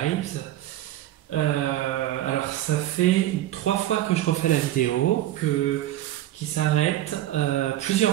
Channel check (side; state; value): left; quieter; 13.8 dB